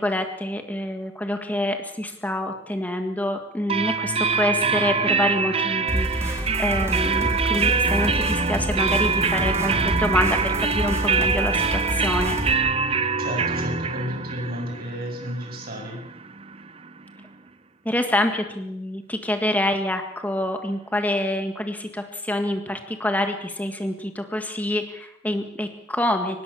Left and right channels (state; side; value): normal; both; correlation 0.38